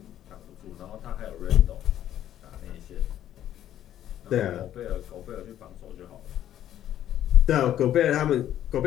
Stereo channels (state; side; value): quieter; right; 11.5 dB